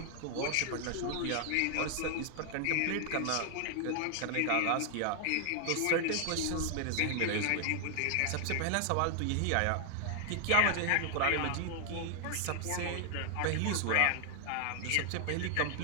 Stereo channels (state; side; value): different; both; correlation 0.00